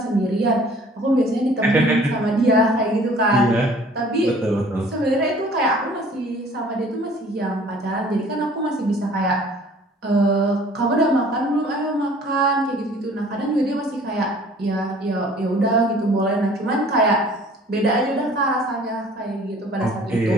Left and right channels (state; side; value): normal; both; correlation 0.52